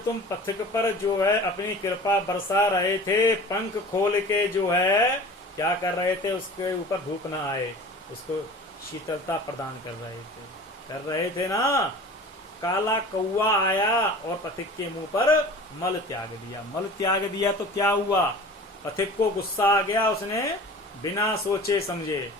तुम पथिक पर जो है अपनी कृपा बरसा रहे थे, पंख खोल के जो है क्या कर रहे थे, उसके ऊपर धूप ना आए, उसको शीतलता प्रदान कर रहे थे ना। काला कौवा आया और पथिक के मुंह पर मल त्याग दिया। मल त्याग दिया तो क्या हुआ, पथिक को गुस्सा आ गया, उसने बिना सोचे समझे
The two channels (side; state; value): both; normal; correlation 0.40